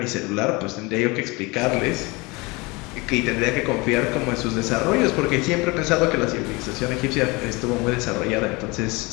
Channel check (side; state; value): right; quieter; 25.4 dB